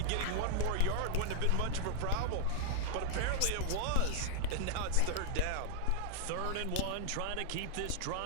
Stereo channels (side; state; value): both; different; correlation 0.00